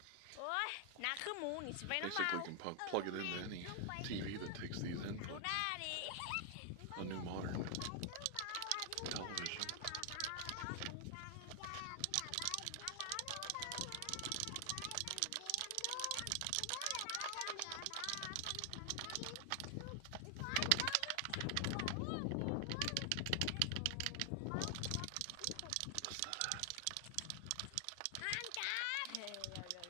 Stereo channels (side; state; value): both; different; correlation 0.00